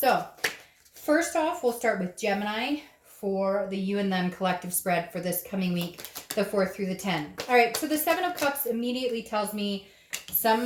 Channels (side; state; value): both; identical; correlation 1.00